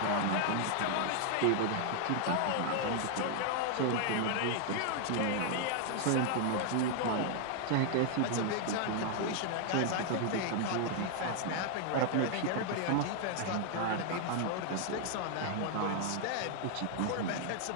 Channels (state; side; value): different; both; correlation 0.00